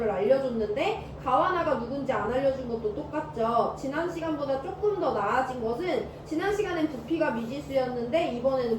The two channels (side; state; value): both; identical; correlation 1.00